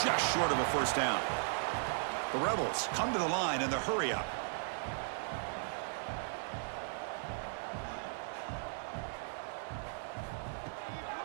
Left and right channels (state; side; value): silent; left; 53 dB below the other